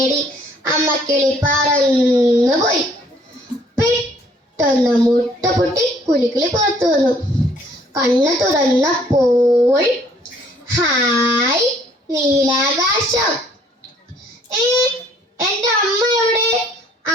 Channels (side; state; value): both; normal; correlation 0.61